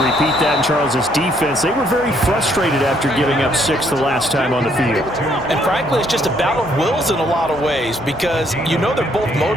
repeat that in Charles's defense. They were very frustrated after giving up 6 the last time on the field. And frankly, it's just a battle of wills in a lot of ways, because you know they're both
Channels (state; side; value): normal; both; correlation 0.68